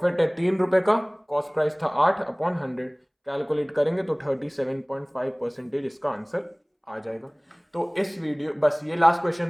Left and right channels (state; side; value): identical; both; correlation 1.00